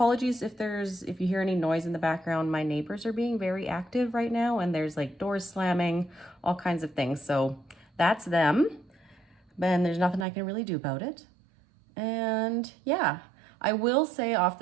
if you hear any noise in the background. My neighbors are being very active right now, and there's like doors slamming, all kinds of things. So that's them, and there's nothing I can really do about it. And yeah, I will say off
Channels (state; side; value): drops out; left; at 10.2 s